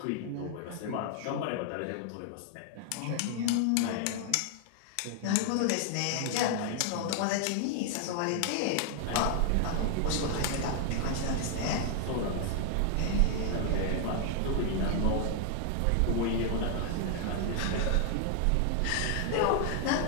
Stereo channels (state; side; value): different; both; correlation 0.00